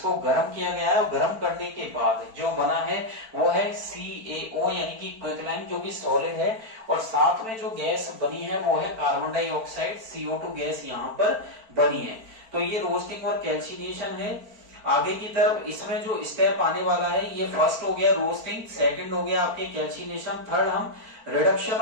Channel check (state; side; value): late; left; 4.5 ms